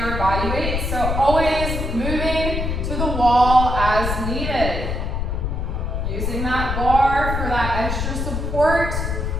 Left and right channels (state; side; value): noise; left; rumble, 2 dB below the sound